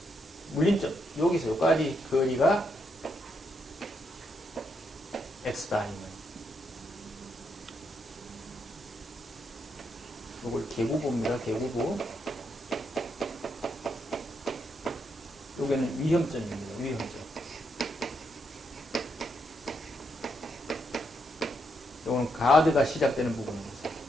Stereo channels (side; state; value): both; normal; correlation 0.79